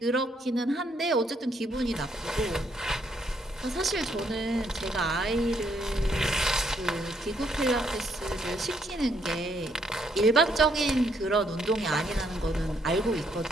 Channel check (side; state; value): both; normal; correlation 0.72